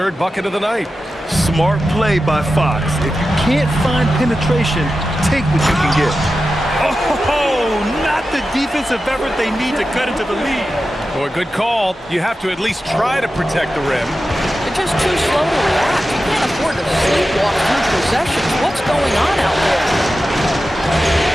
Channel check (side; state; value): both; normal; correlation 0.92